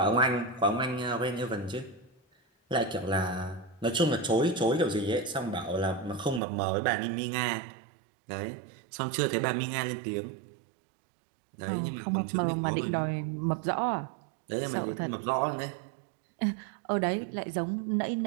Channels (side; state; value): left; drops out; at 6.4 s